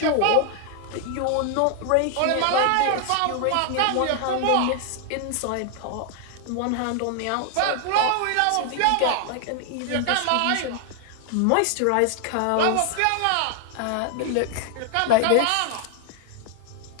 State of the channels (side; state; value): both; different; correlation 0.00